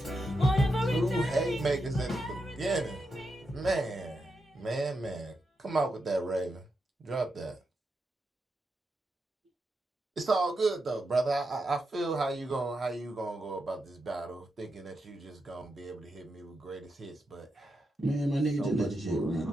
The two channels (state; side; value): normal; both; correlation 0.86